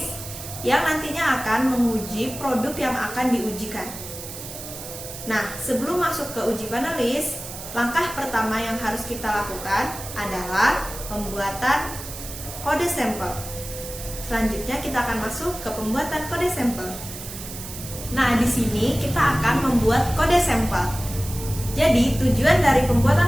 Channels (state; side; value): noise; right; hiss, 11 dB below the sound